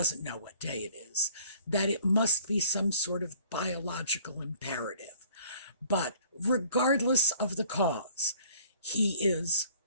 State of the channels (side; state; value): both; inverted; correlation -0.55